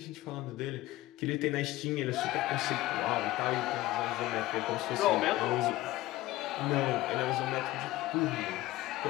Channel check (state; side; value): quieter; right; 17.0 dB